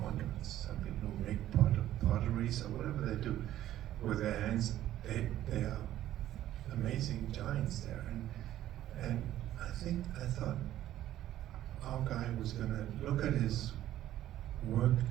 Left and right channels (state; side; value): quieter; left; 13.0 dB